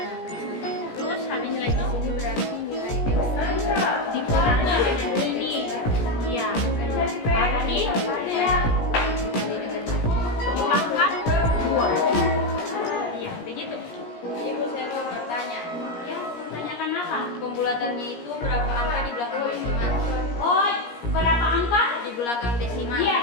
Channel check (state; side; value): late; right; 17 ms